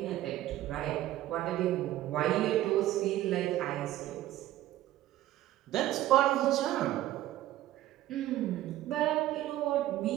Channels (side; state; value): left; quieter; 14.4 dB